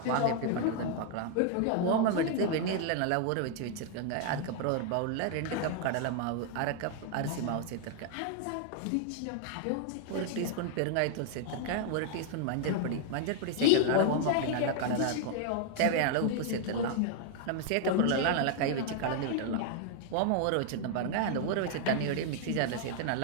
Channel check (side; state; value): both; different; correlation 0.00